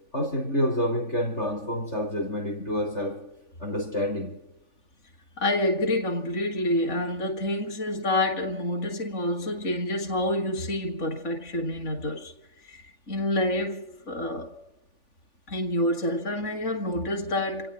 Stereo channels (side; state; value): right; late; 3.5 ms